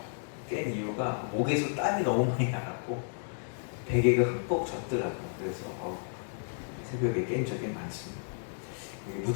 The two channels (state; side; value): silent; right; 56 dB below the other